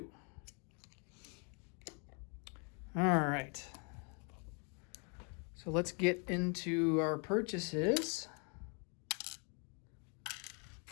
All right. So let's get into our purchases.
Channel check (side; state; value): right; quieter; 37.9 dB